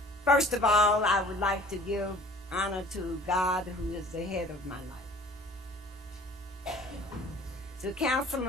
First of all, I would like to give honor to God, who is the head of my life. To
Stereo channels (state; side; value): normal; both; correlation 0.50